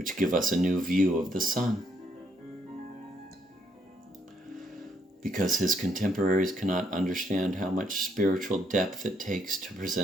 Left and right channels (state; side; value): normal; both; correlation 0.72